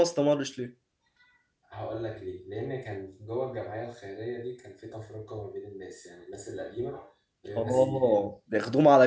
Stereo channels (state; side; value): identical; both; correlation 1.00